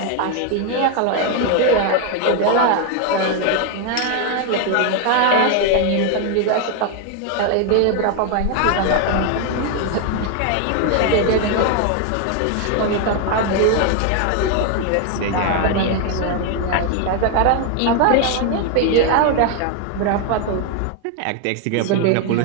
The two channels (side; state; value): both; different; correlation 0.00